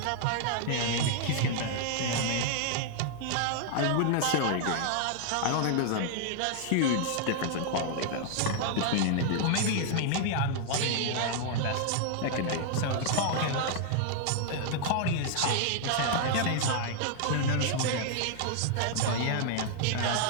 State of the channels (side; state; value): both; different; correlation 0.00